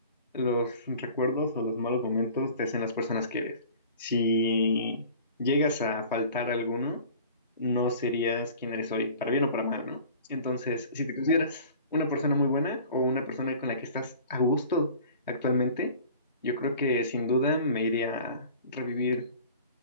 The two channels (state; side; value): inverted; both; correlation -0.45